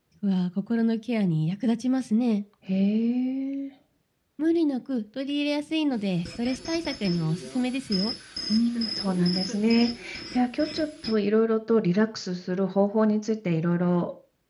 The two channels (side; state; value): both; identical; correlation 1.00